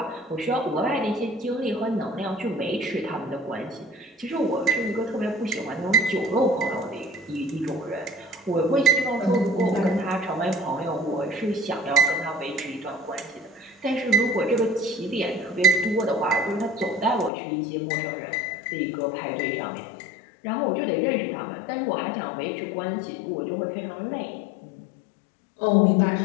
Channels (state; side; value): drops out; right; at 17.3 s